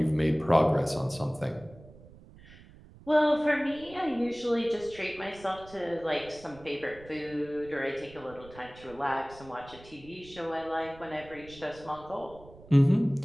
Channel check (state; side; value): noise; right; rumble, 21 dB below the sound